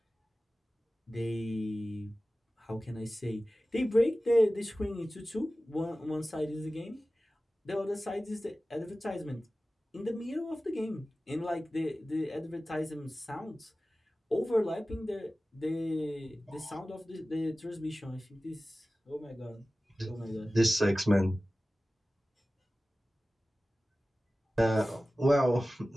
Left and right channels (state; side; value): normal; both; correlation 0.96